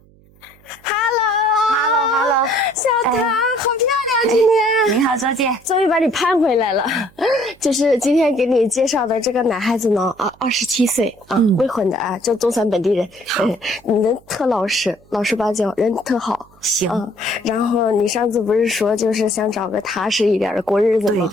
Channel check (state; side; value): noise; right; hum, 28 dB below the sound